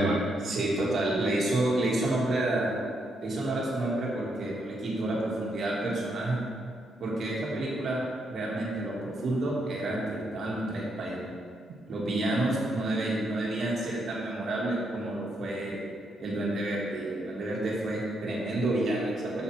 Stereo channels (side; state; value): both; normal; correlation 0.78